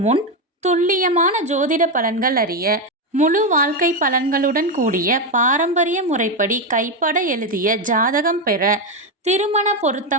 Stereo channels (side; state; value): both; normal; correlation 0.08